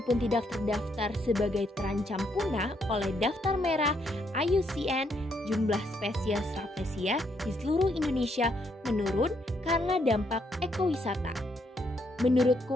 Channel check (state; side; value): normal; both; correlation 0.74